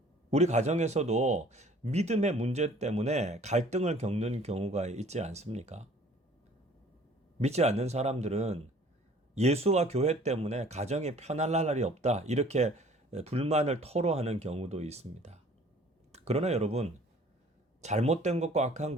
우리 가정에서도 믿음의 문제 때문에 갈등을 겪는 경우가 있지 않습니까? 믿지 않는 사람들은 예수와 교회 때문에 가정이 편할 날이 없다, 이렇게 불만을 토로하는 경우도 있습니다. 그러나 여러분, 잘못된 것과 악한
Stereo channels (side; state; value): both; normal; correlation 0.52